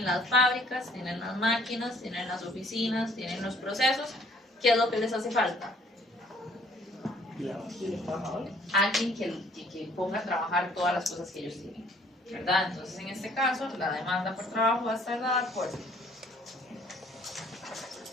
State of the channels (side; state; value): both; normal; correlation 0.59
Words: las fábricas, tienen las máquinas, tienen las oficinas, tienen los procesos. ¿Qué es lo que les hace falta? Alguien que ponga a trabajar todas las cosas que ellos tienen, ¿verdad? Entonces, en este caso, la demanda por trabajo va a estar dada por